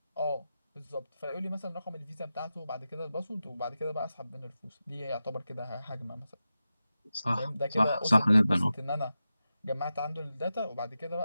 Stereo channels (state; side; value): inverted; both; correlation -0.92